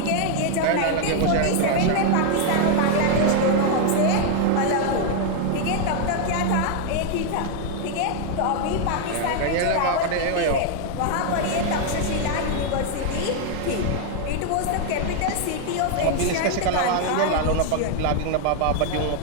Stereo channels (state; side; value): different; both; correlation 0.00